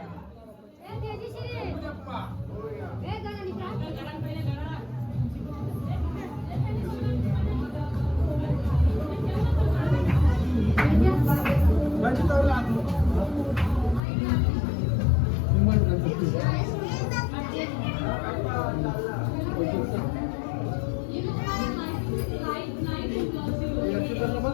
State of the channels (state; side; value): drops out; right; at 14.0 s